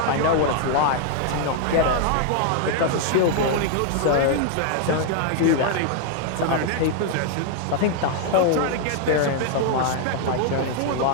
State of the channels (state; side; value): different; both; correlation 0.00